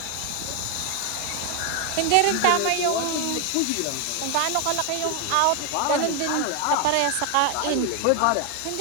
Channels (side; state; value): both; different; correlation 0.01